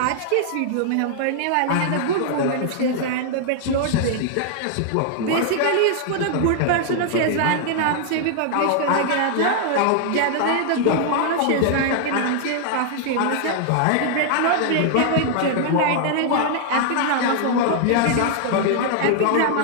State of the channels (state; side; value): different; both; correlation 0.00